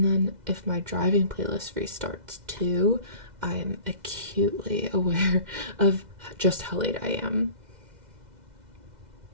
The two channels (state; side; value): late; left; 2.0 ms